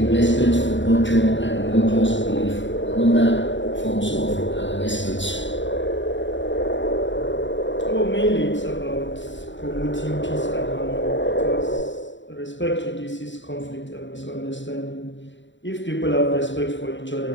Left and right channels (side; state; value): right; late; 0.54 ms